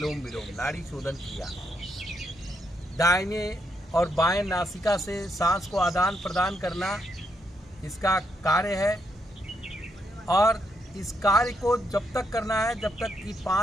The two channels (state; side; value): normal; both; correlation 0.78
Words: विलोम, नाड़ी शोधन क्रिया। दाहिने और बाएं नासिका से सांस को आदान प्रदान करना इसका कार्य है और इस कार्य को जब तक करना है जब तक कि